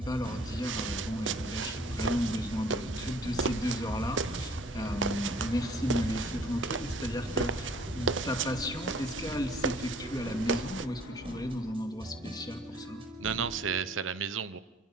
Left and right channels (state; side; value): normal; both; correlation 0.55